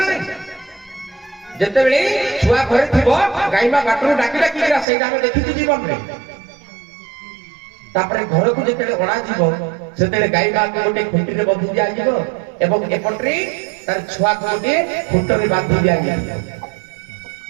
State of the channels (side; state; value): left; drops out; at 4.9 s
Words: ना जेतेबेले छुआ घरे थिबो गाइबा बाटर डाकी डाकी आसे हम देखिथि जीवन रे तापरे घर को जेतेले ओणा जीवो सेतेले गाइबा को गोटे खुंटी रे बंधी दिया जीवो एवं एपटरे तार छुआ को गोटे खुंट रे बांधी दिया